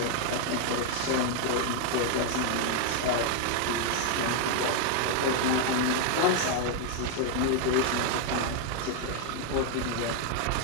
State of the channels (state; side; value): different; both; correlation 0.00